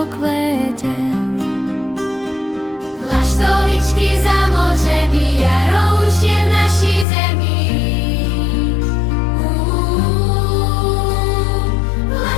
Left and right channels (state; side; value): drops out; right; at 7.1 s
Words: Laštovičky za mořemi, jaro už je v